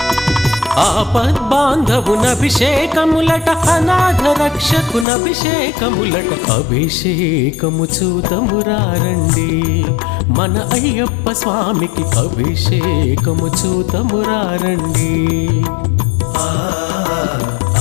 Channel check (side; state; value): right; drops out; at 5.1 s